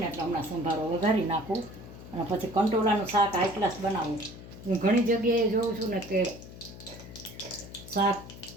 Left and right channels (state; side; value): noise; left; hum, 15 dB below the sound